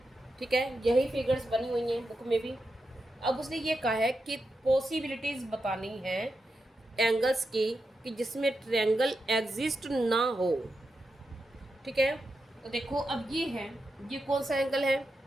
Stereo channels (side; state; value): both; normal; correlation 0.87